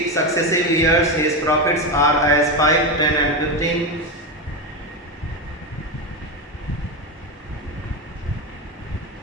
successive years, his profits are as 5, 10 and 15.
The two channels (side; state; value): both; normal; correlation 0.14